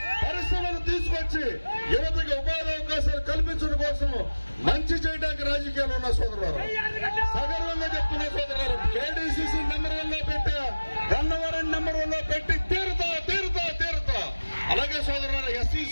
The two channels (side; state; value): both; inverted; correlation -1.00